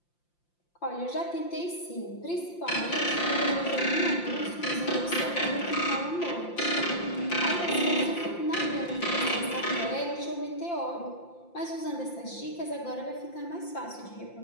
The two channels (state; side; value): late; right; 5.8 ms